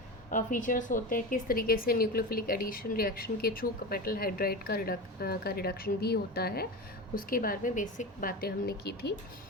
फीचर्स होते हैं, किस तरीके से न्यूक्लियोफिलिक एडिशन रिएक्शन के थ्रू मेटल हाइड्राइड का रिडक्शन भी होता है, उसके बारे में बेसिक बातें हमने की थी।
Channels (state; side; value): normal; both; correlation 0.25